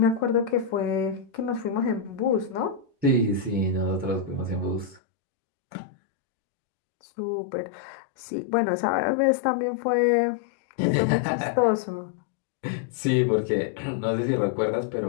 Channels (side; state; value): right; drops out; at 5.0 s